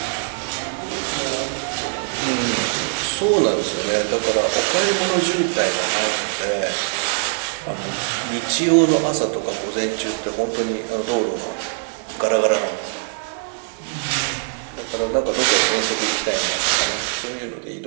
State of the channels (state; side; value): silent; left; 57 dB below the other